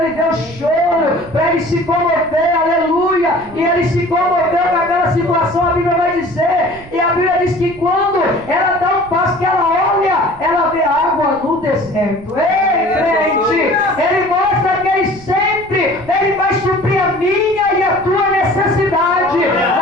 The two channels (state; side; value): noise; right; rumble, 21 dB below the sound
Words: ele ver o choro, para ele se comover, aleluia. E ele se comoveu com aquela situação, a Bíblia vai dizer. E a Bíblia diz que quando ela dá um passo, que ela olha, ela vê água no deserto. Ei, crente! Ele mostra que ele sempre, ele vai suprir a minha e a tua necessidade.